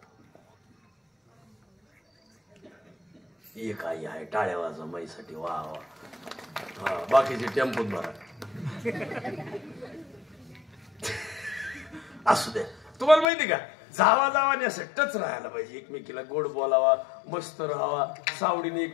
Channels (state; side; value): drops out; right; at 13.2 s